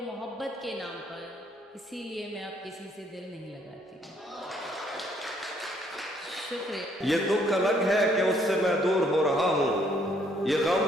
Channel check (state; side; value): normal; both; correlation 0.67